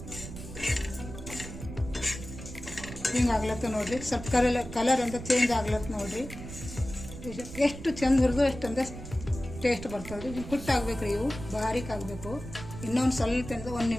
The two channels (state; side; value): noise; right; rumble, 11 dB below the sound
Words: ಹಿಂಗೆ ಆಗ್ಲತ್ತ ನೋಡ್ರಿ. ಸ್ವಲ್ಪ ಕಲರ್ ಚೇಂಜ್ ಆಗ್ಲತ್ತ ನೋಡ್ರಿ. ಎಷ್ಟು ಚಂದ ಹುರಿದು ಅಷ್ಟಂದ ಟೇಸ್ಟ್ ಬರ್ತದೆ. ಹಿಂಗೆ ಕುಟ್ಟಾಗ್ಬೇಕು ರೀ, ಇವು ಬಾರೀಕ್ ಆಗಬೇಕು. ಇನ್ನೊಂದು ಸ್ವಲ್ಪ 1